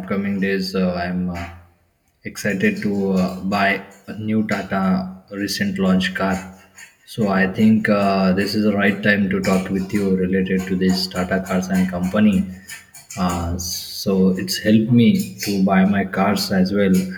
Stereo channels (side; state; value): both; identical; correlation 1.00